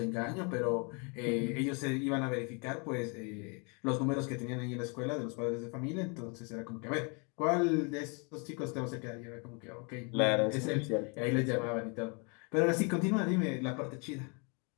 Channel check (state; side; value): quieter; right; 34.2 dB